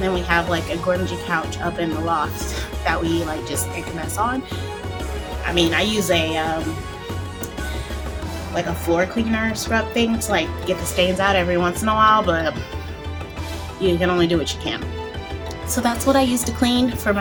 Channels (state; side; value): identical; both; correlation 1.00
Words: we have like a grungy couch up in the loft that we like just make a mess on. I mean, I use a like a floor cleaner scrub thing to like get the stains out every once in a while, but you can only do what you can. So that's what I use to clean for